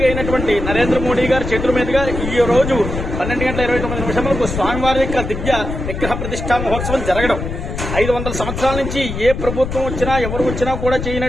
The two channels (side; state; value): left; noise; rumble, 5 dB below the sound